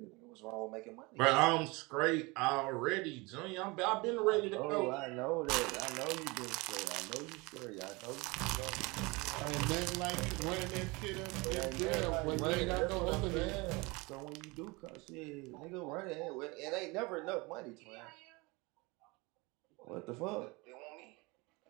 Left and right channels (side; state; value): left; quieter; 25.4 dB